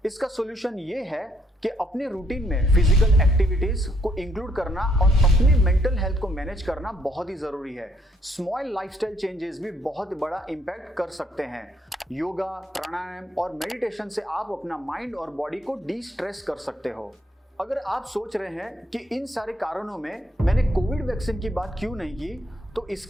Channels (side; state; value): both; normal; correlation 0.71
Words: इसका सॉल्यूशन ये है कि अपने रूटीन में फिजिकल एक्टिविटीज को इंक्लूड करना और अपने मेंटल हेल्थ को मैनेज करना बहुत ही जरूरी है। स्मॉल लाइफस्टाइल चेंजेस भी बहुत बड़ा इंपैक्ट कर सकते हैं। योगा, प्राणायाम और मेडिटेशन से आप अपना माइंड और बॉडी को डी स्ट्रेस कर सकते हो। अगर आप सोच रहे हैं कि इन सारे कारणों में मैंने कोविड वैक्सीन की बात क्यों नहीं की, तो